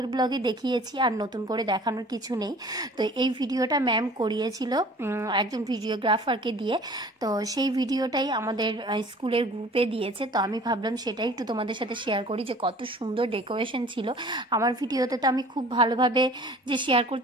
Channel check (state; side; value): normal; both; correlation 0.48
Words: ব্লগে দেখিয়েছি, আর নতুন করে দেখানোর কিছু নেই। তো এই ভিডিওটা ম্যাম করিয়েছিল একজন ভিডিওগ্রাফারকে দিয়ে। তো সেই ভিডিওটাই আমাদের স্কুলের গ্রুপে দিয়েছে। তো আমি ভাবলাম সেটাই একটু তোমাদের সাথে শেয়ার করি, যে কত সুন্দর ডেকোরেশন ছিল। আমার ভিডিওতে তো আমি খুব ভালোভাবে যে শেয়ার